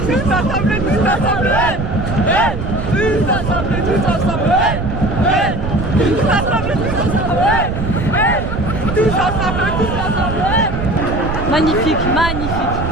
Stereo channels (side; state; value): right; noise; rumble, 4 dB below the sound